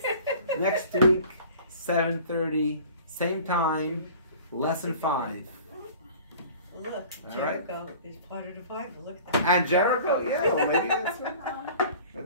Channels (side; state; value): both; inverted; correlation -0.45